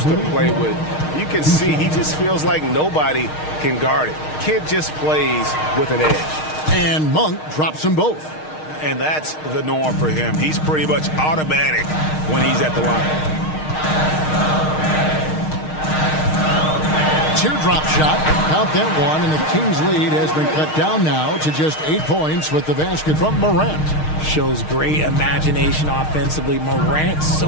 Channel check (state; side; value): late; right; 6.5 ms